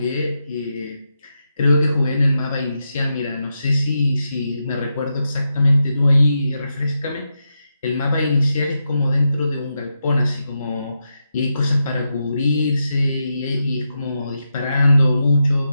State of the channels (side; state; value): both; inverted; correlation -0.86